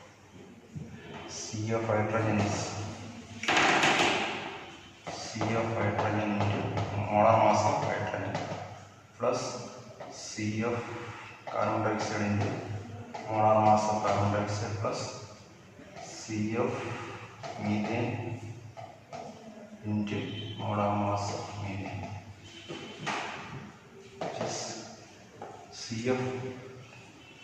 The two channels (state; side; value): identical; both; correlation 1.00